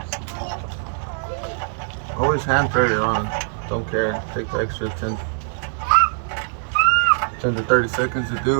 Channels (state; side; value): silent; left; 61 dB below the other